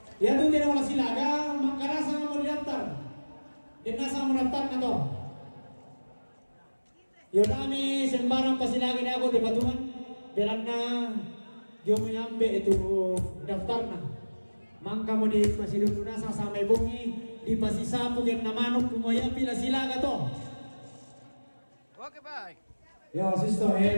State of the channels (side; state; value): both; inverted; correlation -1.00